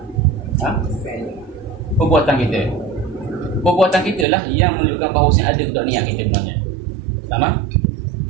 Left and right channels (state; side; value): drops out; left; at 4.2 s